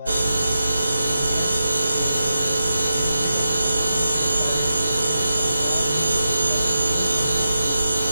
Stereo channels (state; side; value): inverted; both; correlation -0.88